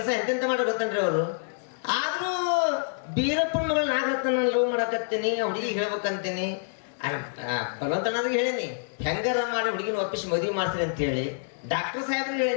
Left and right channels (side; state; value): right; silent; 60 dB below the other